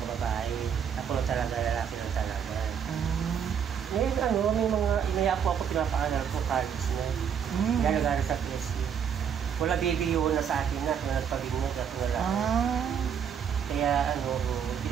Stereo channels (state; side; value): quieter; left; 7.9 dB